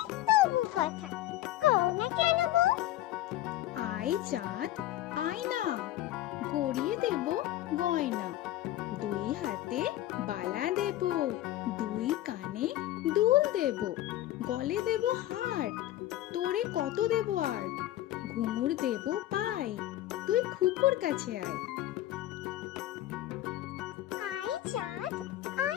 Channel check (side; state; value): right; quieter; 14.5 dB